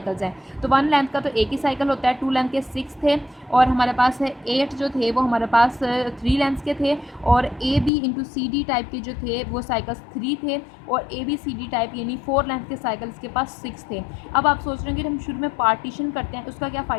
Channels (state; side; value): drops out; right; at 7.9 s